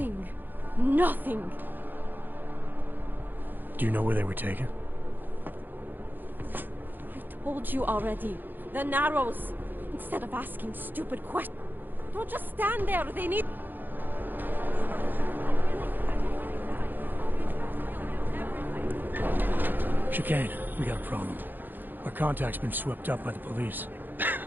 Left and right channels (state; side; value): late; left; 0.089 ms